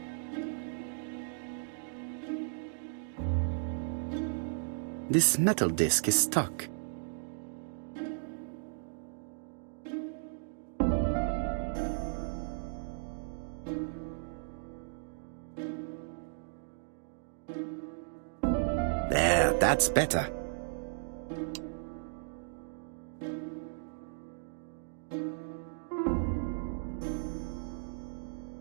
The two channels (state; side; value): silent; left; digital silence